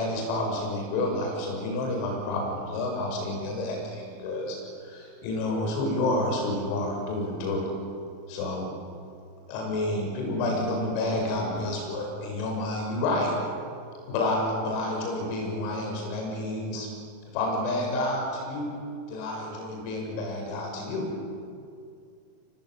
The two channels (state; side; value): late; right; 36 ms